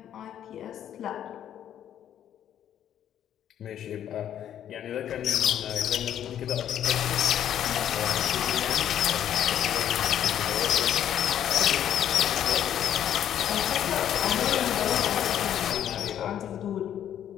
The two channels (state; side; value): quieter; right; 10.3 dB